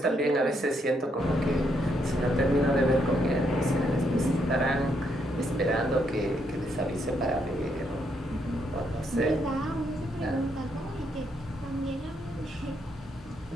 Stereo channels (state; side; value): normal; both; correlation 0.76